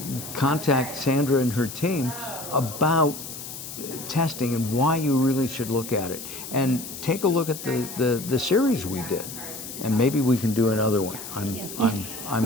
contact Sandra and her team about testing and why you really should look at it. And take a look at the series we did. And maybe we can do another one. I'm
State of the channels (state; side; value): noise; left; hiss, 10 dB below the sound